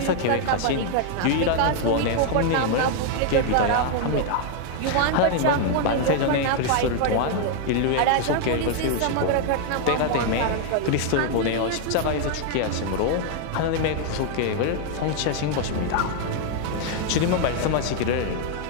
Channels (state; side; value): different; both; correlation 0.00